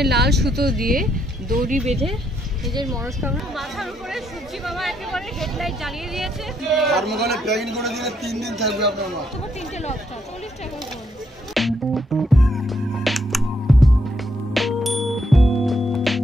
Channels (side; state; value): both; normal; correlation 0.75